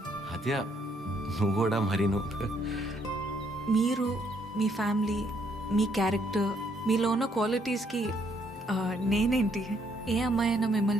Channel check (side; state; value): both; normal; correlation 0.70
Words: ఆద్య నువ్వు కూడా మరి మీరు, మీ ఫ్యామిలీ, మీ క్యారెక్టర్, మీలో ఉన్న క్వాలిటీస్కి నేనేంటి, ఏ అమ్మాయి అయినా